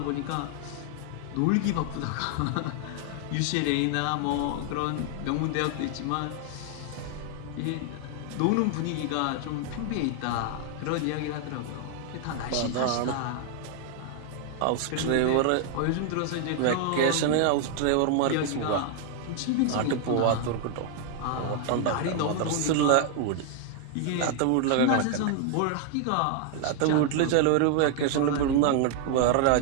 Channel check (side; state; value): both; different; correlation 0.00